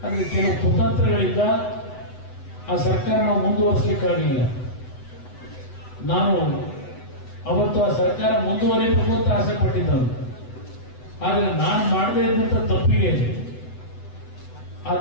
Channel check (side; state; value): right; late; 8.0 ms